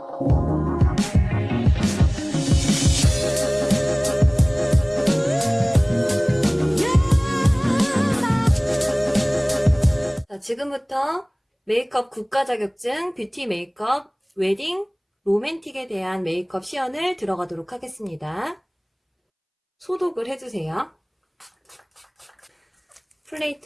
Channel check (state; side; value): identical; both; correlation 1.00